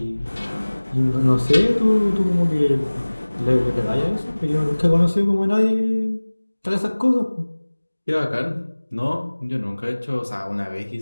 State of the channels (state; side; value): inverted; both; correlation -1.00